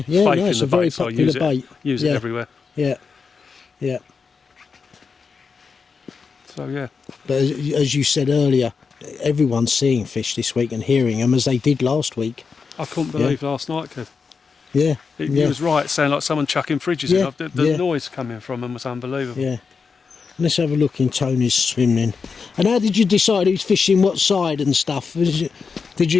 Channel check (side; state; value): right; quieter; 5.3 dB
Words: faith no, in it's the a very bait, so I popular use bait. Use Yeah. it everywhere. Yeah, yeah. So yeah. But as you said earlier, everyone's seeing fish this week and hearing them as they did last week. I couldn't believe last night, Kev. Yeah, He was right, sounding like someone chucking fridges Yeah, in. The yeah. noise coming from them was unbelievable. yeah. Let's have a look in Tony's swimming. And how did you decide who's fishing what side and stuff? Did